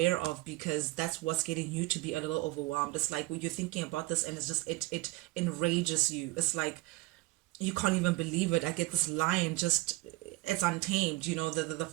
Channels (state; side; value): quieter; left; 20.2 dB